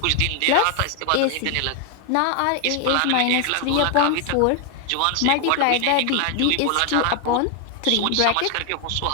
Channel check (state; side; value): different; both; correlation 0.00